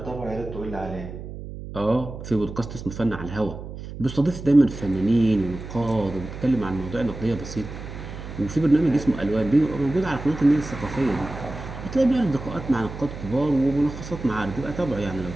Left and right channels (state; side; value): noise; right; hum, 11 dB below the sound